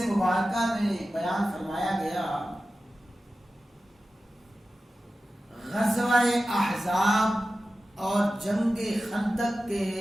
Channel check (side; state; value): both; normal; correlation 0.94